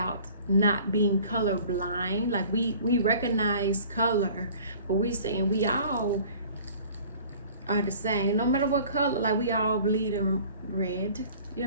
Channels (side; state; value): both; inverted; correlation -0.49